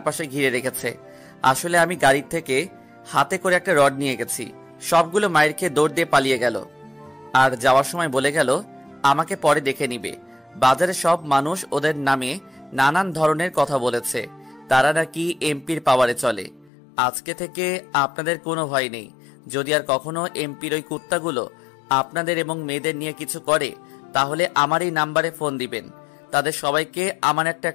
ঘিরে রেখেছে। আসলে আমি গাড়ির থেকে হাতে করে একটা রড নিয়ে গেছি। সবগুলো মায়ের খেয়ে দৌড় দিয়ে পালিয়ে গেল। আর যাওয়ার সময় বলে গেল আমাকে পরে দেখে নিবে। বাজারে সব মানুষ ওদের নামে নানান ধরনের কথা বলেছে। তারা নাকি এমপির পাওয়ারে চলে। আজকে থেকে আপনাদের কোনো ভয় নেই। যদি আর কখনো এমপির ওই কুত্তাগুলো আপনাদের এবং মেয়েদের নিয়ে কিছু করে তাহলে আমার এই নাম্বারে ফোন দিবেন। তাদের সবাইকে আমার একটা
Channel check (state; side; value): drops out; right; at 16.7 s